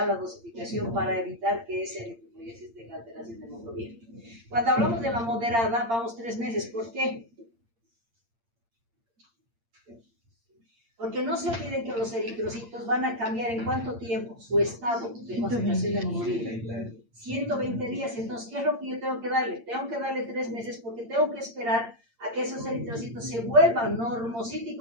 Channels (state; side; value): late; left; 8.7 ms